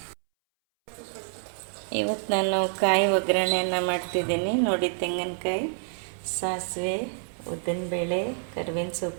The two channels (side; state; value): left; silent; 60 dB below the other